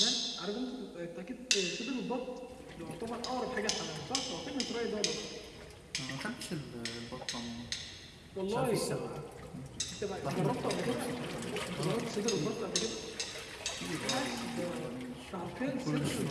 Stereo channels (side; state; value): both; identical; correlation 1.00